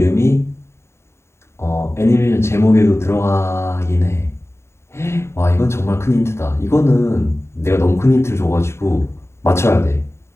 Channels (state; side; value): late; right; 0.13 ms